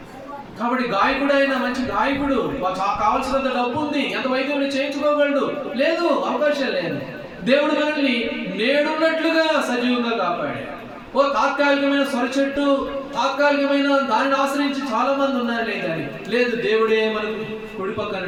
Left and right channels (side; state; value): both; identical; correlation 1.00